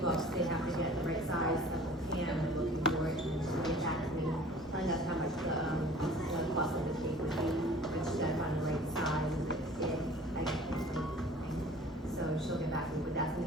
books, they have to get the right size of the pan. They're looking for it and to get back to me, telling us how much the cost of the cake would be, which then find the right size. If I so she'll get back to me, but that's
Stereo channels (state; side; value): normal; both; correlation 0.47